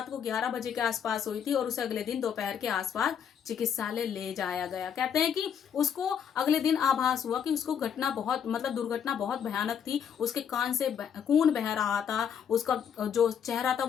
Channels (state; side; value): quieter; right; 8.1 dB